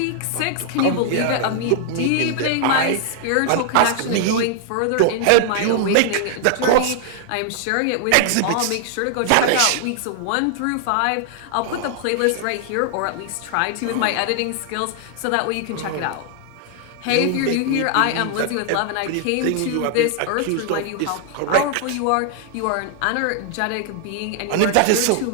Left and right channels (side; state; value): both; different; correlation 0.00